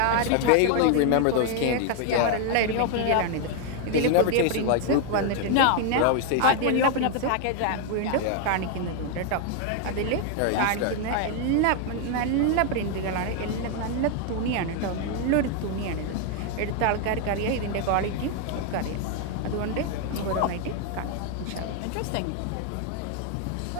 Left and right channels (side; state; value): both; different; correlation 0.00